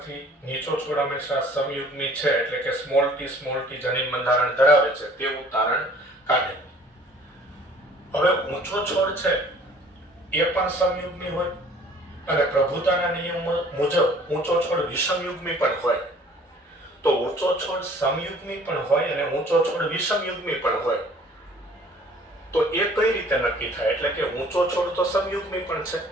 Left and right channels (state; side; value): normal; both; correlation 0.53